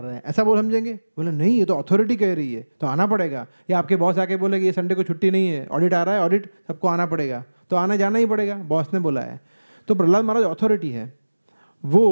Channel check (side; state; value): both; inverted; correlation -1.00